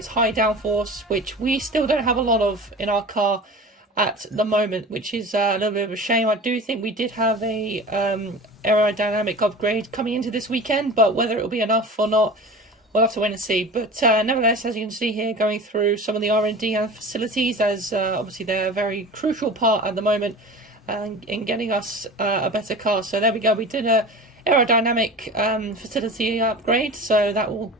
high downforce, which we still don't have a lot of in our car at the moment, which is a little bit of a shame. I do think we did have a aerodynamic upgrade coming into this weekend, but whether it will be enough or not, we'll have to wait and see. But nevertheless, as you can see here, going through some of the R&D and facilities, as obviously they're a very crucial part at the moment in getting us a better car. So there we go, we did a aerodynamic facility upgrade, so that will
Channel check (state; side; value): normal; both; correlation 0.36